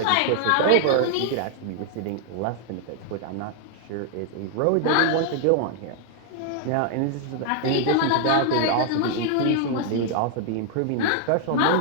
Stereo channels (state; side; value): different; both; correlation 0.00